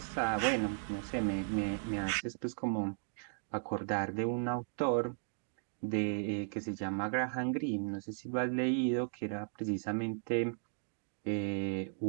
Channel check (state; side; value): silent; left; digital silence